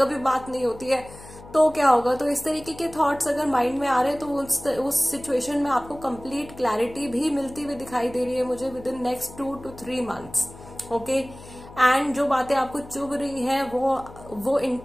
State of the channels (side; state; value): left; noise; hum, 18 dB below the sound